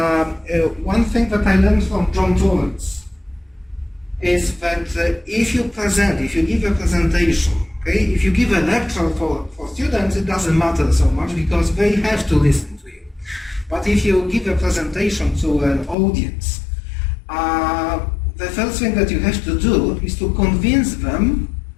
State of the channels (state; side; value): drops out; right; at 16.0 s